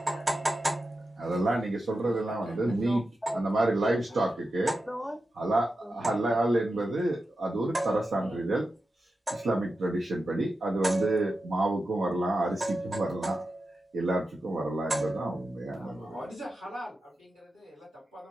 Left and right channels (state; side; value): normal; both; correlation 0.91